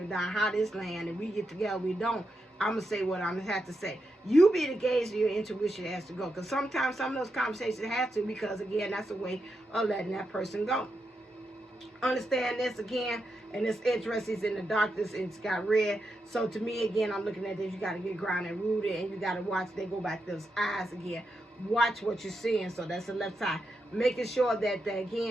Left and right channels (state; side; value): normal; both; correlation 0.85